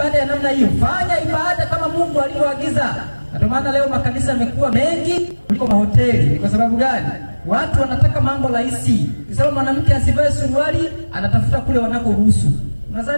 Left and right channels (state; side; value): inverted; both; correlation -1.00